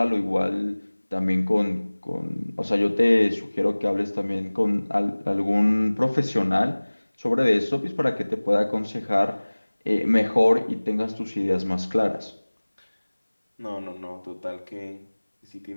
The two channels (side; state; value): both; inverted; correlation -1.00